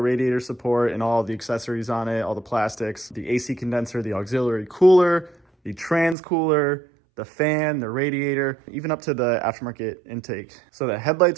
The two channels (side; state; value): left; drops out; at 6.2 s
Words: support and all the accessories on it, all the plastics, the AC condenser, the auxiliary cooler, the trans cooler, the fan, the radiator, even up to the aftermarket intake. So the